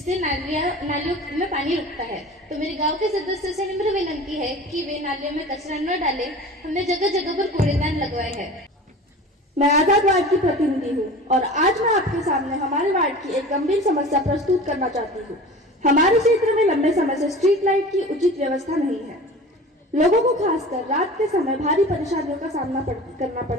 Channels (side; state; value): both; normal; correlation 0.38